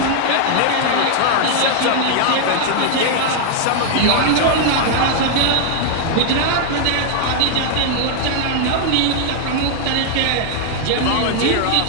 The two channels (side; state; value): both; different; correlation 0.00